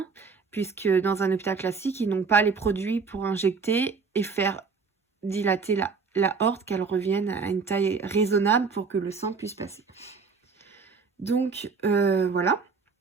puisque dans un hôpital classique, ils n'ont pas les produits pour injecter et faire dilater la aorte, qu'elle revienne à une taille raisonnable pour que le sang puisse passer. Donc voilà.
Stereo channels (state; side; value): quieter; left; 5.0 dB